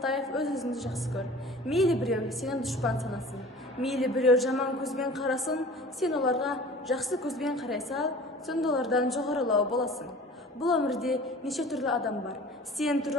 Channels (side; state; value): both; normal; correlation 0.43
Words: өз-өзіңді жақсы көр. Мейлі біреу сенің дұшпан санасын, мейлі біреу жаман көзбен қарасын, сен оларға жақсы көзбен қарай сал, сонда олардан жоғарылау боласың. Бұл өмірде неше түрлі адам бар. Сен